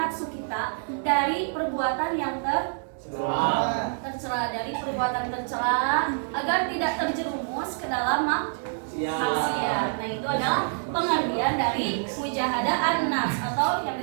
kita dari perbuatan yang tercela, dari perbuatan tercela agar tidak terjerumus ke dalam maksiat. Nah, itu adalah pengertian dari mujahadah an-nafs atau yang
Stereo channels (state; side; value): silent; left; digital silence